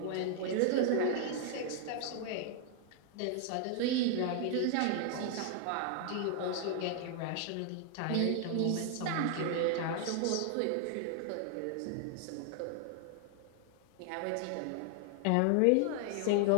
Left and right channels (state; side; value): different; both; correlation 0.00